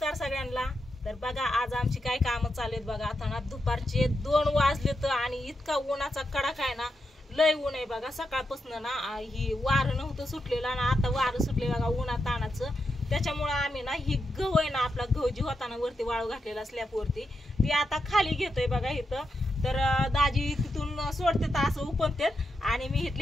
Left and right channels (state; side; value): normal; both; correlation 0.85